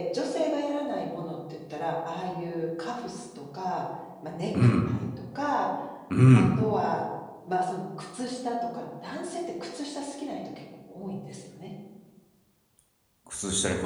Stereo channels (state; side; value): identical; both; correlation 1.00